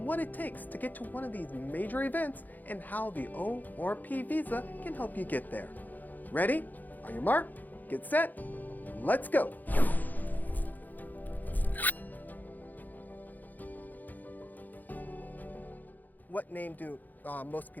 what it takes to get to one of these major events and how the O or P visa can help you get there. Ready? On your mark, get set, let's go! What name do most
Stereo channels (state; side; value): late; right; 0.084 ms